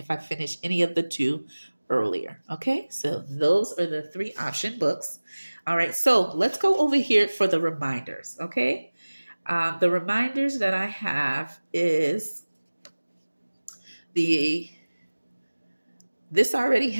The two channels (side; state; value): both; inverted; correlation -1.00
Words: I finish any of the 2 earlier. Okay, so those are the 3 option books. All right, so let's go over here for the reminders. Okay, the reminders that I have is this already